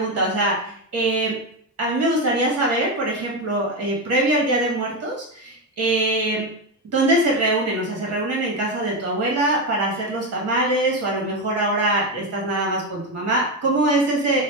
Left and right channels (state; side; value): normal; both; correlation 0.11